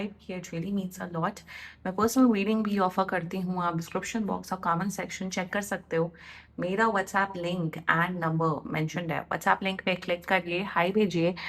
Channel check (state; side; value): identical; both; correlation 1.00